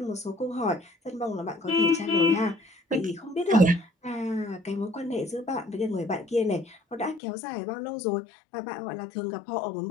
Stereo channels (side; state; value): right; drops out; at 7.2 s